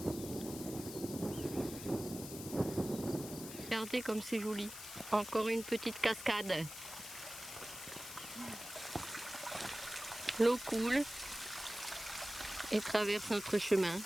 Regardez comme c'est joli. Encore une petite cascade. L'eau coule et traverse notre chemin.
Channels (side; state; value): left; noise; hiss, 11 dB below the sound